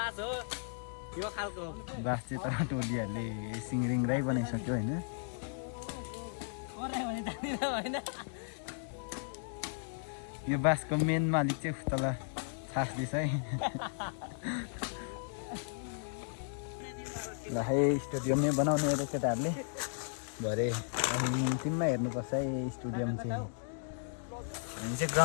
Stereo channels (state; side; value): silent; right; digital silence